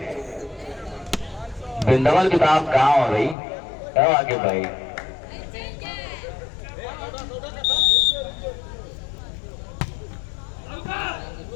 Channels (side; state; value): right; drops out; at 3.4 s